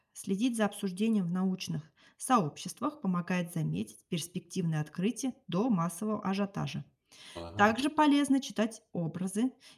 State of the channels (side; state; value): both; identical; correlation 1.00